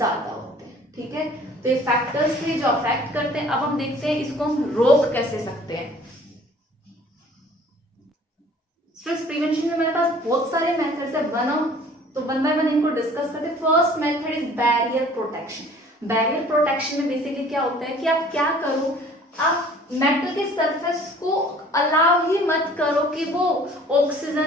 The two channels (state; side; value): normal; both; correlation 0.52